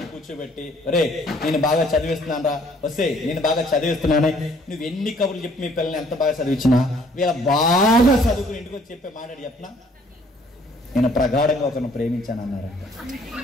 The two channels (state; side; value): normal; both; correlation 0.60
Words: కూర్చోబెట్టి, ఒరే నేను బాగా చదివిస్తున్నాను రా, వస్తే నేను బాగా చదివిస్తున్నానే, నువ్వు ఎన్ని కబుర్లు చెప్పి మీ పిల్లల్ని ఎంత బాగా చదివించినా వీళ్ళ బాగా చదువుకుని ఇంటికి వచ్చి చెప్పే మాట్లాడి చెప్పనా, నేను ప్రగాఢంగా ఒకరిని ప్రేమించాను అన్నారంట.